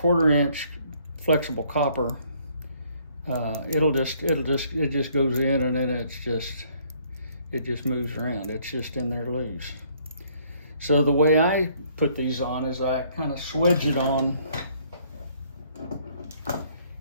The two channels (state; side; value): inverted; both; correlation -0.64